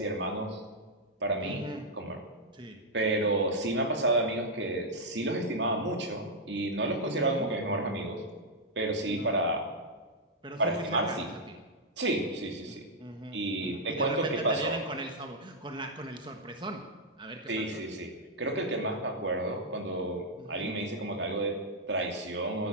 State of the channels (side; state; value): both; normal; correlation -0.04